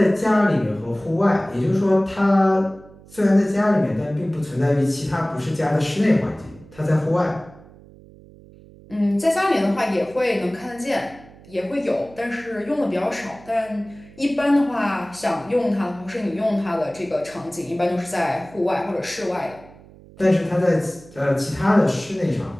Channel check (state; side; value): noise; right; hum, 22 dB below the sound